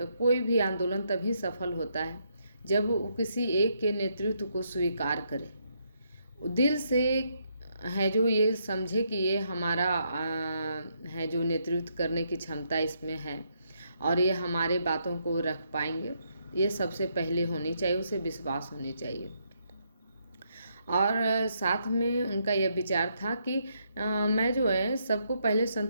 कोई भी आंदोलन तभी सफल होता है जब वो किसी एक के नेतृत्व को स्वीकार करे, दिल से है, जो ये समझे कि ये हमारा है, जो नेतृत्व करने की क्षमता इसमें है और ये हमारे बातों को रख पाएंगे। ये सबसे पहले होनी चाहिए, उसे विश्वास होनी चाहिए। और साथ में उनका यह विचार था कि मैं जो है सबको पहले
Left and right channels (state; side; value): inverted; both; correlation -0.76